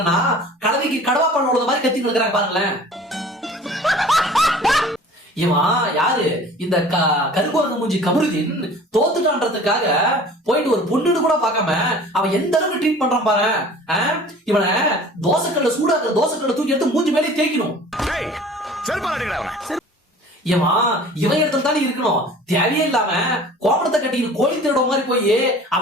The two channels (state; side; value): normal; both; correlation 0.45